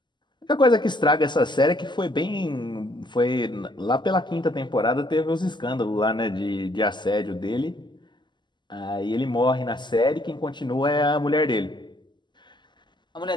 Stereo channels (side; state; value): right; late; 0.22 ms